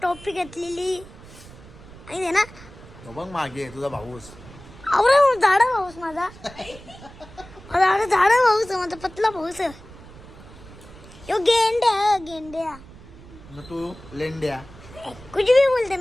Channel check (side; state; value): right; noise; rumble, 19 dB below the sound